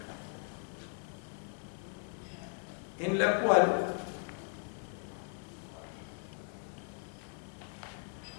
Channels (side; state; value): right; silent; 53 dB below the other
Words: en la cual